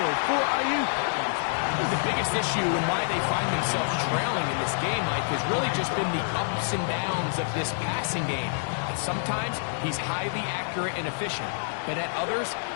for Ayuk. The biggest issue and why they find themselves trailing in this game, Mike, has really just been the ups and downs of this passing game. And sometimes he's highly accurate and efficient, but at others,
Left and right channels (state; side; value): silent; right; digital silence